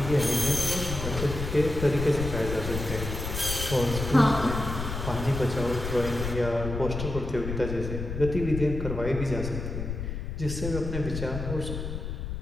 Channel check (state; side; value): noise; left; rumble, 5 dB below the sound